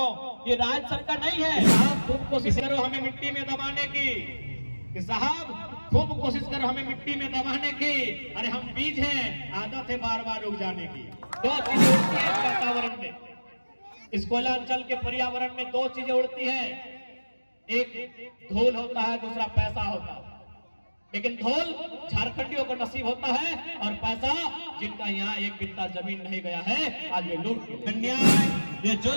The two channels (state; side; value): inverted; both; correlation -1.00